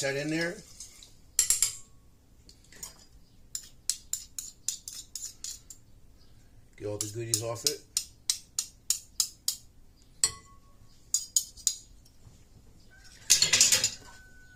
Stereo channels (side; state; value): both; identical; correlation 1.00